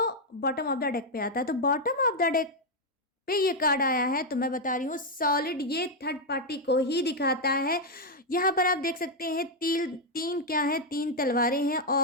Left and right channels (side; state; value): both; normal; correlation 0.01